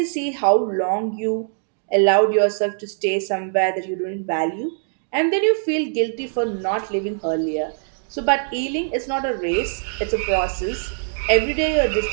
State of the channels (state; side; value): silent; left; digital silence